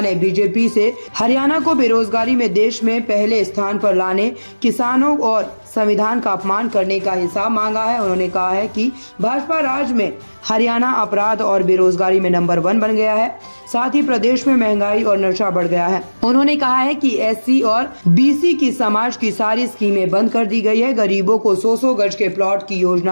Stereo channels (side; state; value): both; inverted; correlation -1.00